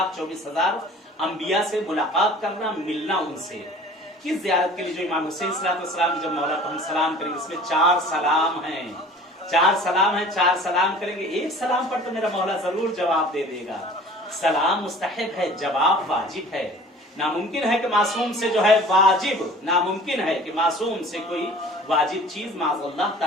अंबिया से मुलाकात करना, मिलना उनसे, किस ज़ियारत के लिए जो इमाम हुसैन सलाम जब मौला को हम सलाम करेंगे, इसमें 4 सलाम हैं, 4 सलाम हैं, 4 सलाम करेंगे, एक सलाम पर तो मेरा मौला जरूर जवाब दे देगा। सलाम मुस्तहिब है, जवाब वाजिब है। नामुमकिन है कि मासूम से जो है वाजिब, नामुमकिन है कि मासूम से कोई वाजिब चीज माज़अल्लाह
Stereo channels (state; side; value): normal; both; correlation 0.46